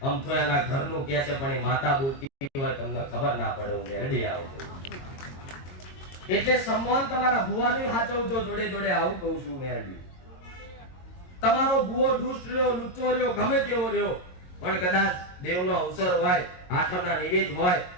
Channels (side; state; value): right; late; 22 ms